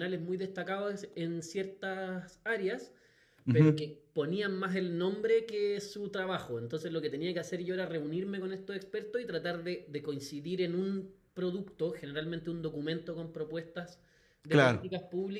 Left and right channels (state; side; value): identical; both; correlation 1.00